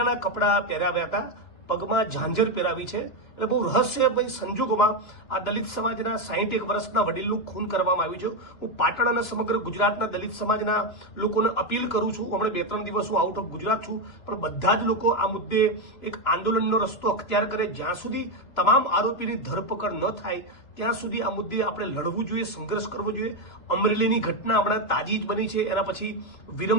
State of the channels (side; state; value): right; late; 2.9 ms